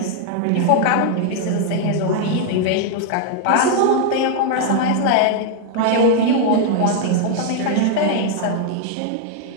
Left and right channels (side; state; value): both; different; correlation 0.00